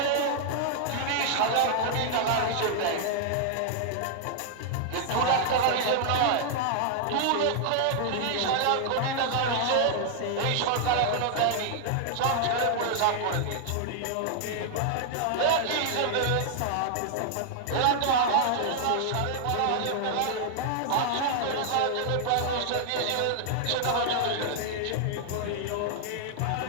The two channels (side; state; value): both; different; correlation -0.01